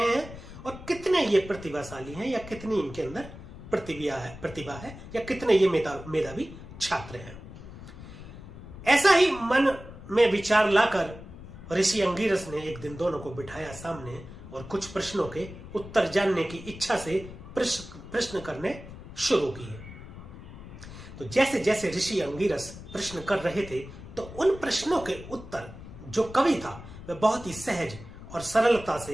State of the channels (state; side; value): noise; left; rumble, 14 dB below the sound